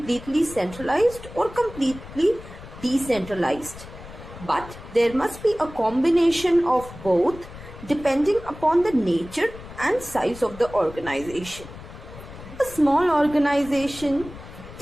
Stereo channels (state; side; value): noise; left; rumble, 15 dB below the sound